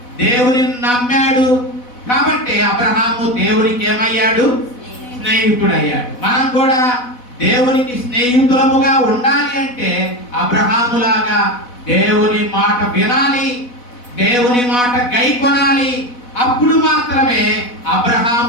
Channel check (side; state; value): right; late; 4.1 ms